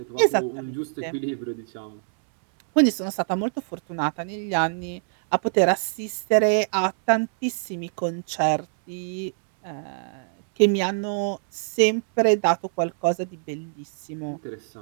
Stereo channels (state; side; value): silent; left; 62 dB below the other